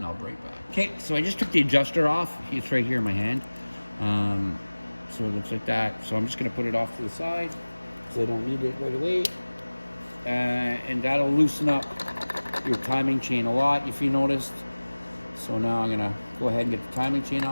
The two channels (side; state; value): both; inverted; correlation -1.00